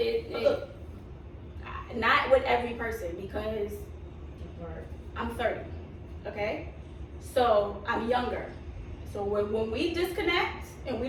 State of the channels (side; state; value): both; identical; correlation 1.00